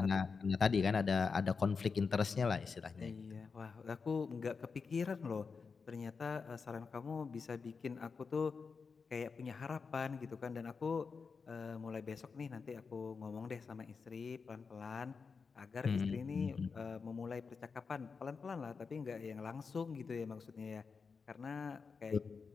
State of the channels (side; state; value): right; quieter; 5.2 dB